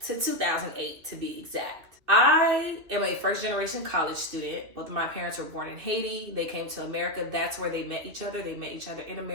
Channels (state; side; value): late; left; 2.8 ms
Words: 2008 to be exact. I am a first generation college student. Both of my parents were born in Haiti. They came to America. That's where they met each other. They met each other in